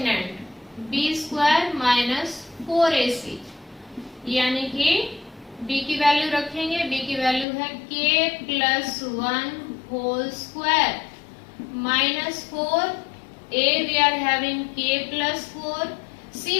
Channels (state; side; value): drops out; right; at 7.5 s